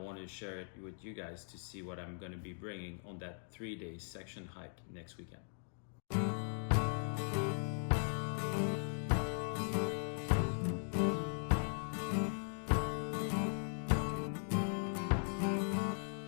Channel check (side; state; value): right; silent; digital silence